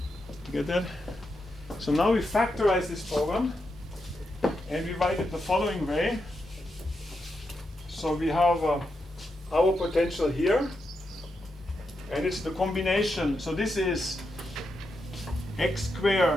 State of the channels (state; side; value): normal; both; correlation 0.85